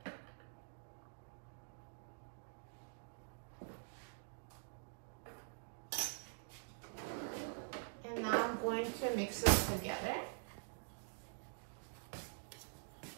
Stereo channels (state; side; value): silent; left; digital silence